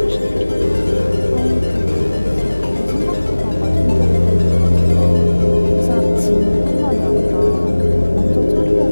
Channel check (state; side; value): inverted; both; correlation -1.00